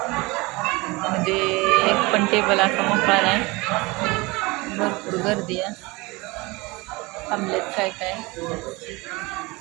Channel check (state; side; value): quieter; left; 24.1 dB